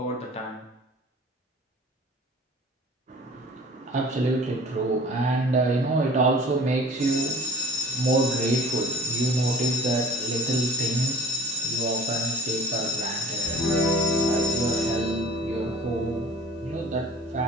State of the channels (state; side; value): normal; both; correlation 0.45